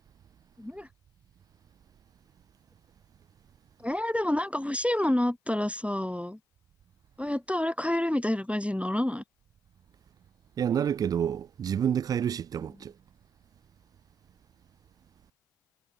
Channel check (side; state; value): both; normal; correlation 0.85